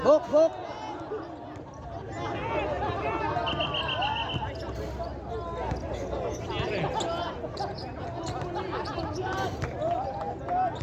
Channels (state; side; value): identical; both; correlation 1.00